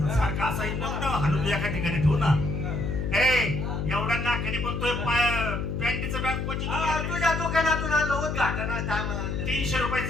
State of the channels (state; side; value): noise; left; hum, 2 dB below the sound